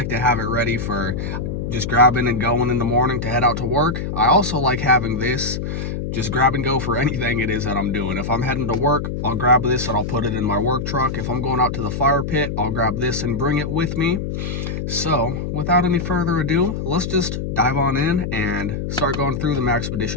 to have it ready for just grabbing and going in the morning to head out to work. I also like having this just grab and go for anything it is that I'm doing. If I'm heading to work, I'll grab this and I'll put it in my work truck. If I'm going out to the fire pit, I'll grab this and bring it with me. So without any further ado, let's just dive on in and start going through the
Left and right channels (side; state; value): left; noise; hum, 4 dB below the sound